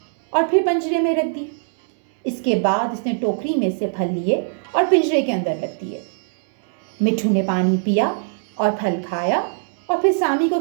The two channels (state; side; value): silent; left; digital silence